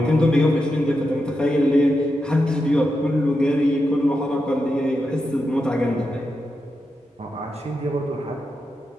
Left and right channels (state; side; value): normal; both; correlation 0.87